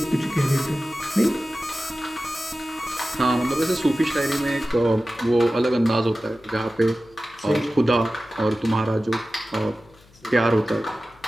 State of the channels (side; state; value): left; noise; hum, 28 dB below the sound